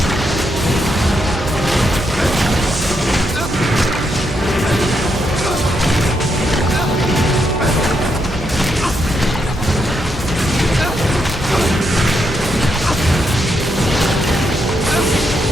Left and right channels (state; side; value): normal; both; correlation 0.80